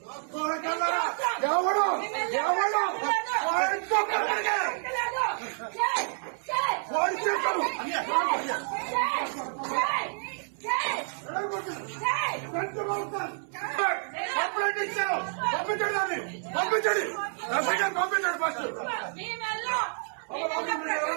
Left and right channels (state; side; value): silent; left; 59 dB below the other